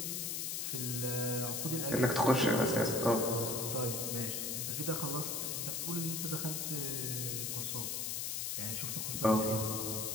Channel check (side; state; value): left; noise; hiss, 1 dB below the sound